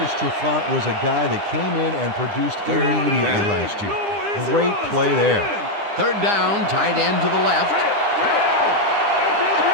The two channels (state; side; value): late; left; 9.9 ms